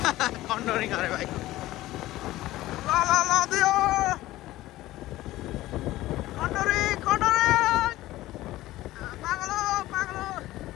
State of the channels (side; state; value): right; quieter; 16.5 dB